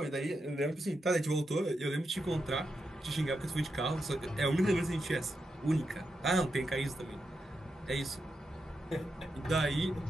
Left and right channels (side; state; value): both; normal; correlation 0.86